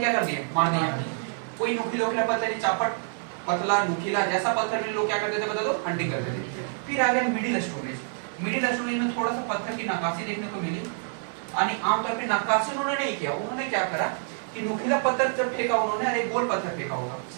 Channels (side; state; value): left; silent; 57 dB below the other